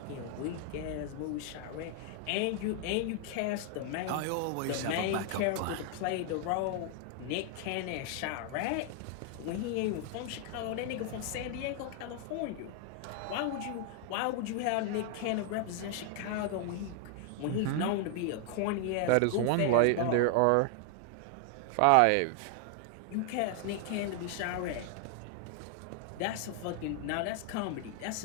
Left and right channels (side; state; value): both; different; correlation 0.00